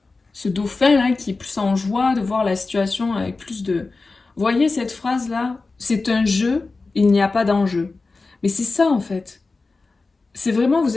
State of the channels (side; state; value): right; quieter; 3.8 dB